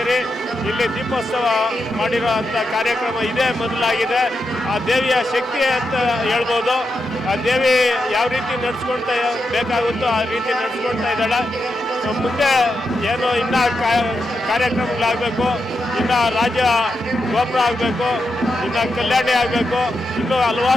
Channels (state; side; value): normal; both; correlation 0.86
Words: ಇಲ್ಲಿ ದೀಪೋತ್ಸವ ಮಾಡಿರೋ ಅಂಥ ಕಾರ್ಯಕ್ರಮ ಇದೇ ಮೊದಲಾಗಿದೆ. ಆ ದೇವಿಯ ಶಕ್ತಿ ಅಂತ ಹೇಳ್ಬೋದು. ಆ ದೇವಿ ಯಾವ ರೀತಿ ನಡೆಸ್ಕೊಳ್ತಾ ಬೇಕಾಗುತ್ತೋ ಆ ರೀತಿ ನಡೆಸ್ಕೊಳ್ತಾ ಇದ್ದಾಳೆ. ಮುಂದೆ ಏನು ಇನ್ನೂ ಕಾರ್ಯಕ್ರಮಗಳಾಗಬೇಕು, ಇನ್ನು ರಾಜ್ಯ ಗೋಪುರ ಆಗಬೇಕು, ಇನ್ನು ಕಲ್ಯಾಣಿ ಆಗಬೇಕು, ಇನ್ನೂ